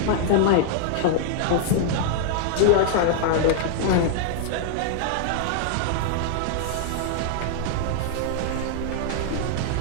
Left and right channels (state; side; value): different; both; correlation 0.00